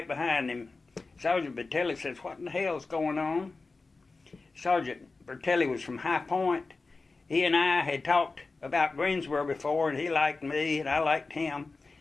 behind him. Sergeant Bertelli says, "What in the hell's going on?" Sergeant Bertelli was from High Point. He and I had talked about Greensboro before, and he liked me, and I liked him.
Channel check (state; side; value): quieter; right; 3.8 dB